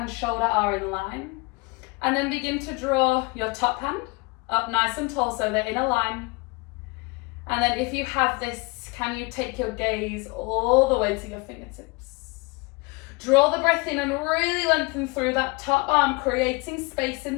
shoulder are in line, and then begin to draw your top hand up nice and tall so they're in a line. And then if you have this, can you take your gaze all the way to your fingertips? Draw the breath in and really lengthen through that top arm, creating space in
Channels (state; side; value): quieter; right; 27.3 dB